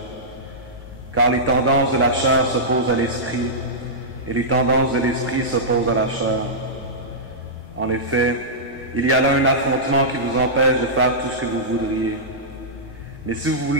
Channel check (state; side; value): normal; both; correlation -0.13